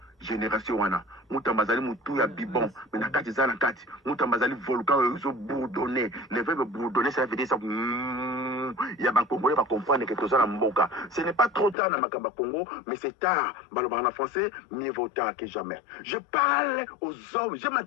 génération wana. Mutamba zali mutu ya bibon, mais na kati zana kati. Mutamba zali volcan ils bourdonné. Le verbe bourdonner ça veut dire ça. Il y a un Congolais va comprendre que tout ça mboka. Ce n'est pas trop tard dans Makamba Congo, mais c'est tard. En français, mieux vaut tard que jamais. Je parle aux hommes, je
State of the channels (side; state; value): right; drops out; at 11.8 s